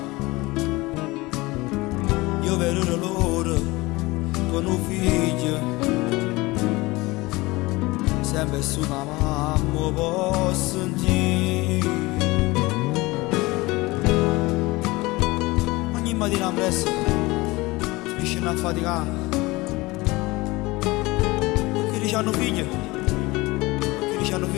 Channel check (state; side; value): quieter; right; 21.8 dB